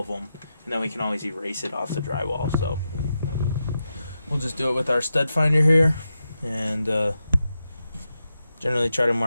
them, and then we can always erase it off the drywall. So we'll just do it with our stud finder here, and generally try to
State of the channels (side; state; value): both; inverted; correlation -0.88